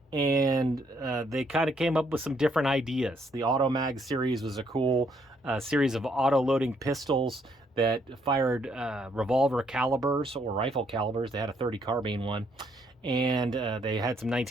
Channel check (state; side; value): normal; both; correlation 0.71